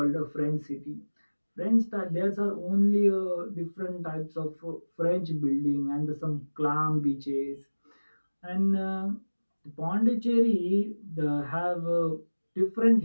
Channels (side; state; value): both; inverted; correlation -1.00